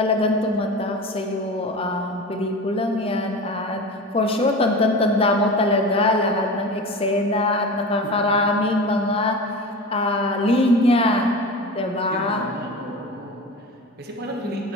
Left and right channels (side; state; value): both; normal; correlation 0.31